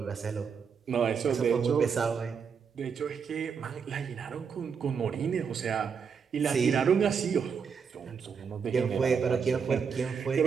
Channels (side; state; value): left; quieter; 6.3 dB